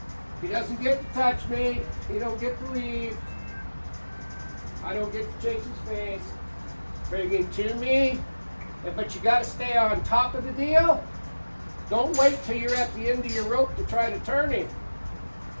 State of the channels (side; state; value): both; inverted; correlation -1.00